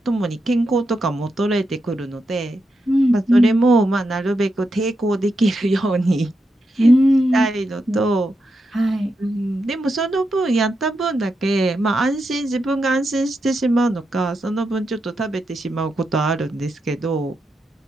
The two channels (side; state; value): both; normal; correlation 0.85